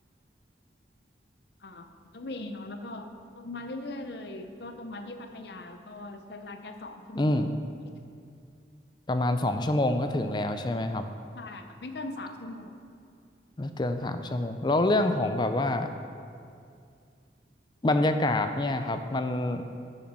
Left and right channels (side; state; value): both; normal; correlation 0.59